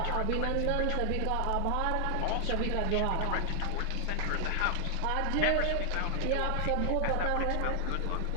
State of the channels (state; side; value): different; both; correlation 0.00